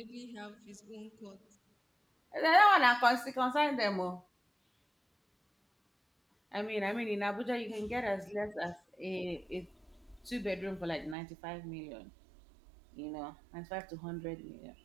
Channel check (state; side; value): drops out; left; at 11.2 s